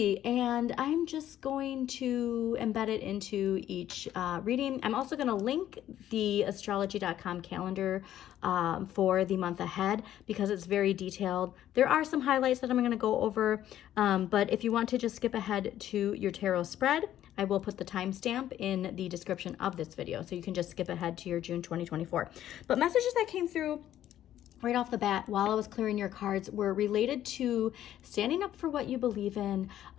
and I'm just going to embed it into each reading. I'm also going to link the astrology.com calendar for the month ahead because it's very detailed. There are some highlights that I'm going to go over, but if you want to just skip ahead to your tarot spread, I will put the timestamp in the description of this video, so you can just skip ahead to your June 2024. But messages that came through right off the bat while I was clearing your cards were related to standing up for what you believe in.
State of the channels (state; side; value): quieter; right; 12.0 dB